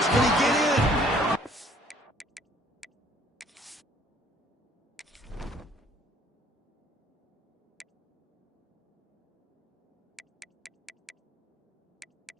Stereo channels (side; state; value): both; normal; correlation 0.58